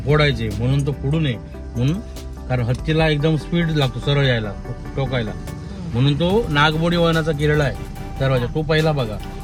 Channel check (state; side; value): identical; both; correlation 1.00